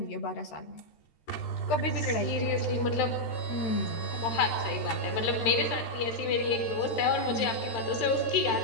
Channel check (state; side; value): late; right; 13 ms